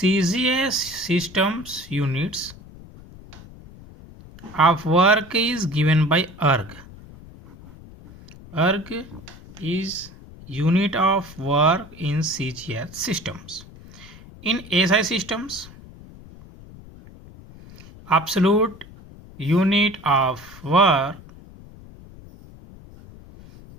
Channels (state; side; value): noise; left; rumble, 19 dB below the sound